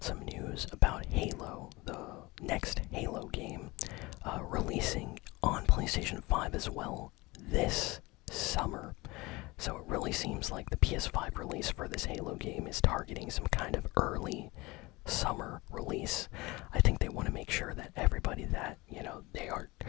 some news about Halo, the next Halo game, releasing on PlayStation 5 as well this summer. So it really seems like the PS5 release for this Halo game is targeting some kind of early summer release. I think they want to make sure that everybody that, they are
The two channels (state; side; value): quieter; right; 22.5 dB